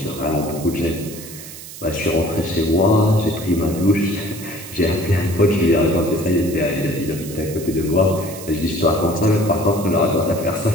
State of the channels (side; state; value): right; noise; hiss, 14 dB below the sound